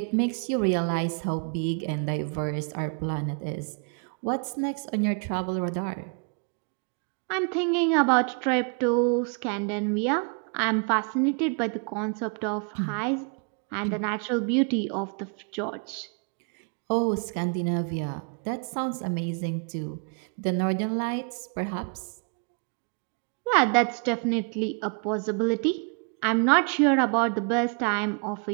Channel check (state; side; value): quieter; left; 39.2 dB